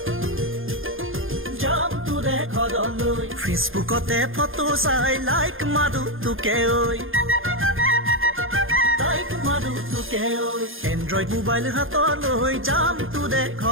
ফেচবুকতে ফটো চাই লাইক মাৰো তোকে ঐ এন্ড্ৰইড মোবাইল হাতলৈ যাম তোৰে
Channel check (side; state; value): left; late; 0.59 ms